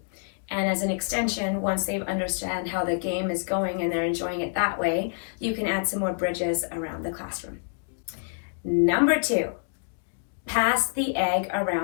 And as an extension, once they understand how the game is going and they're enjoying it that way, you can add some more bridges around the classroom. Number 2, pass the egg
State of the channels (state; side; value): silent; right; digital silence